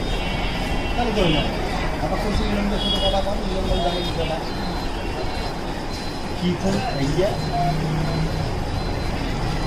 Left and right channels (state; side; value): identical; both; correlation 1.00